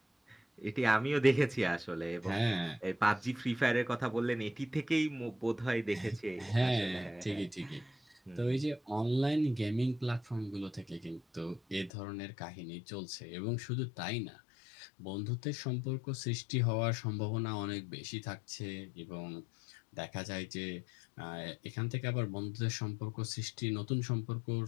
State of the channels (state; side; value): drops out; right; at 11.9 s